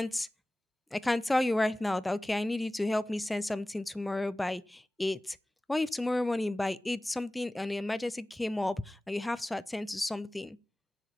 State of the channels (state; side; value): normal; both; correlation 0.98